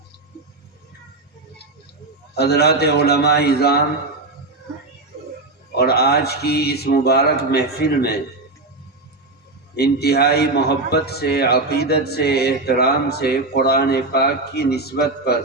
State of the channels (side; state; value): left; quieter; 3.0 dB